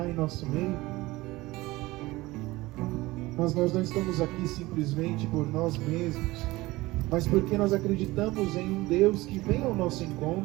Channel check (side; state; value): left; quieter; 19.8 dB